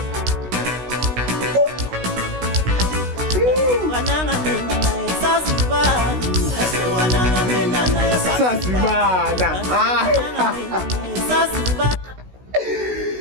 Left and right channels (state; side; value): late; left; 16 ms